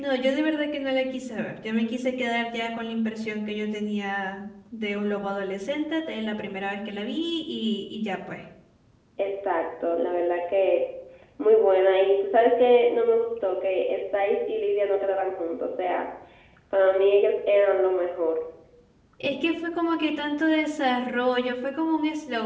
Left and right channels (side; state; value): both; identical; correlation 1.00